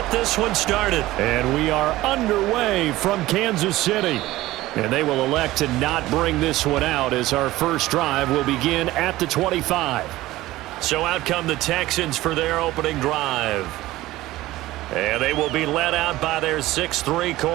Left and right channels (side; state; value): left; quieter; 17.0 dB